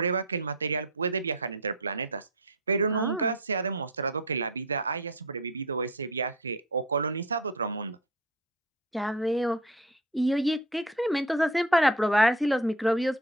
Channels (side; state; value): both; normal; correlation 0.33